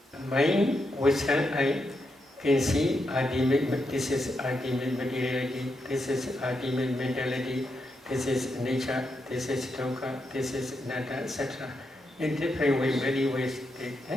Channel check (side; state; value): both; normal; correlation 0.84